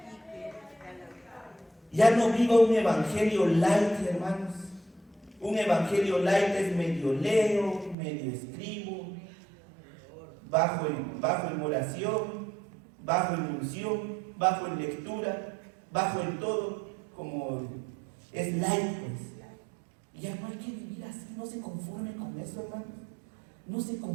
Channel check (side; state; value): left; drops out; at 8.0 s